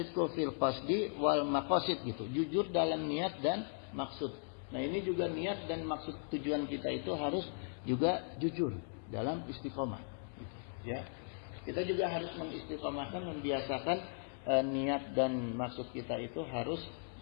fil qasdi wal maqasid, gitu. Jujur dalam niat dan maksud. Nah ini juga niat dan maksud tujuan kita itu harus juga jujur dalam istiqomah. Gitu. Ya, kita juga harus mengistiqomahkan, membiasakan niat dan maksud kita itu harus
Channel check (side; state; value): right; silent; 53 dB below the other